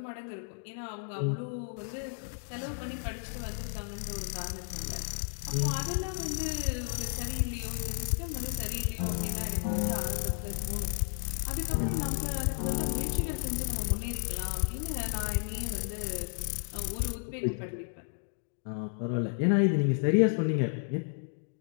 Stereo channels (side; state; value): right; silent; digital silence